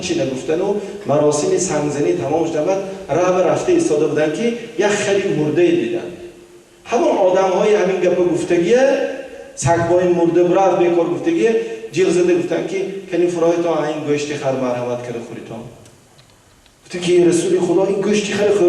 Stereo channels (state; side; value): identical; both; correlation 1.00